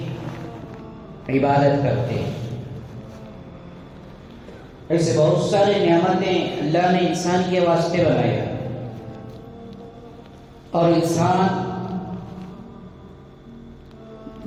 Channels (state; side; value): identical; both; correlation 1.00